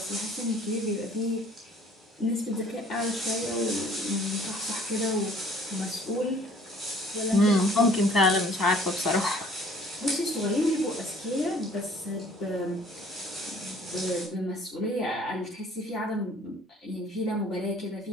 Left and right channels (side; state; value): both; normal; correlation 0.55